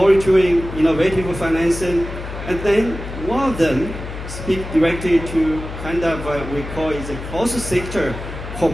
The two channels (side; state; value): left; noise; hum, 9 dB below the sound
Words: innovative financing, and then one of them speak directly to kind of we call it the cross-sector